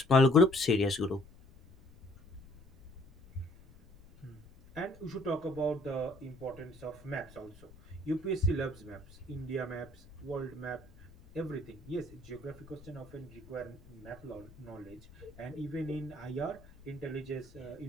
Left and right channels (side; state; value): left; noise; rumble, 22 dB below the sound